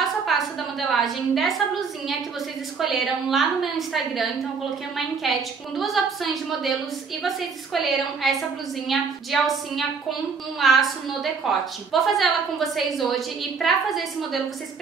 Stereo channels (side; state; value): left; quieter; 5.3 dB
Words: a passo da modelagem dessa blusinha que vocês escolheram lá no meu Instagram. Então eu coloquei uma enquete com duas opções de modelos e vocês escolheram essa blusinha de alcinha com um laço no decote. Vou fazer ela com vocês hoje e pra fazer esse modelo vocês